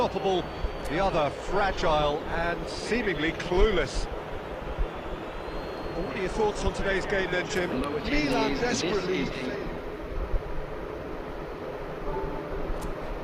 the other fragile and seemingly clueless. Well, what are your thoughts on today's game then, Jim? Milan desperately...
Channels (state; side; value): identical; both; correlation 1.00